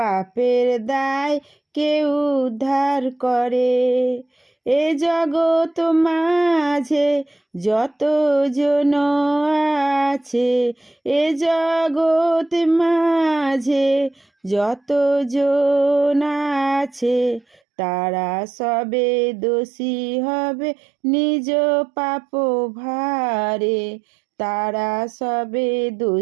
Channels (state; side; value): drops out; left; at 17.6 s